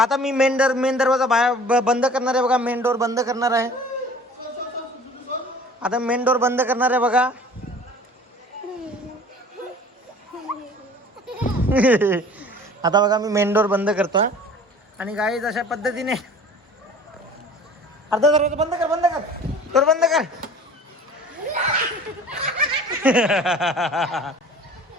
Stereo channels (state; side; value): normal; both; correlation 0.46